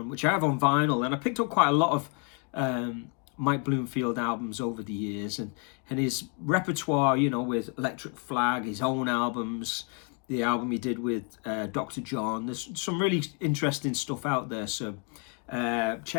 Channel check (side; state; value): right; quieter; 35.9 dB